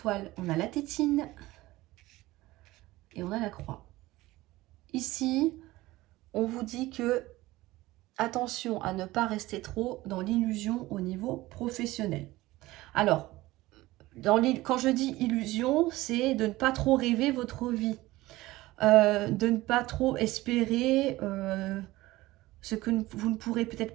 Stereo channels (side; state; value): left; quieter; 18.4 dB